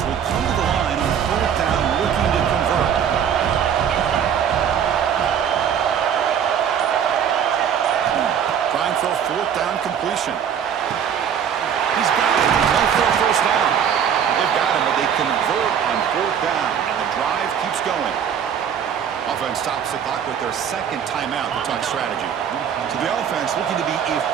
will come to the line on fourth down looking to convert. Trying for a fourth down completion. He's got it. Going for a first down. They've got him, but they convert on fourth down, and the drive keeps going. Offense stops the clock with their second timeout to talk strategy. So the offense looking to be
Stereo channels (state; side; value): quieter; left; 8.3 dB